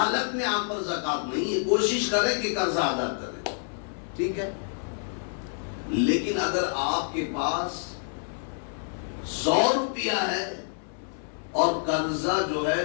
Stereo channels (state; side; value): silent; right; 58 dB below the other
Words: میں آپ پر زکات نہیں ہے. کوشش کریں کہ قرضہ ادا کریں, ٹھیک ہے. لیکن اگر آپ کے پاس 100 روپیہ ہے اور قرضہ جو ہے